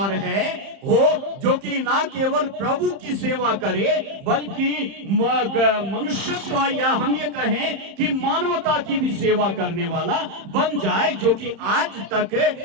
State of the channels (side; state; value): left; late; 31 ms